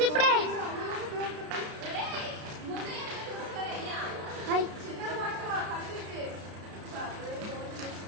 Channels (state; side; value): late; left; 33 ms